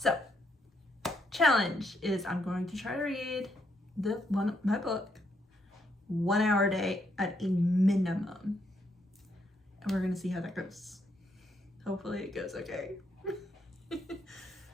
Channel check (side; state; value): both; normal; correlation 0.76